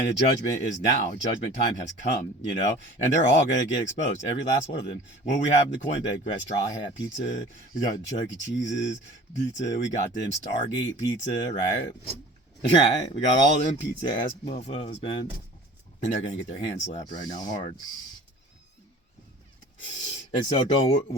the judgment is now. Judgment time has come, you know. And they're all going to get exposed. Every last one of them. What we have in the coin bag, we got Straw Hat Pizza. We got Chuck E. Cheese's pizza. We got them Stargate pizza, right? Right? We got all them pizza ass mofos, man. And they're going to get their hands slapped right now hard. And so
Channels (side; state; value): both; normal; correlation 0.44